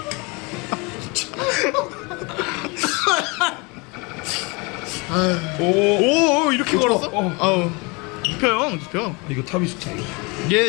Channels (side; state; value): right; quieter; 28.2 dB